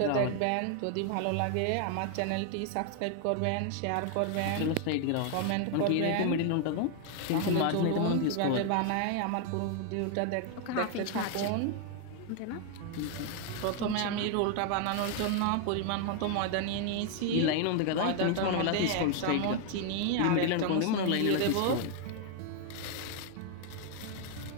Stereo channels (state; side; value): different; both; correlation 0.00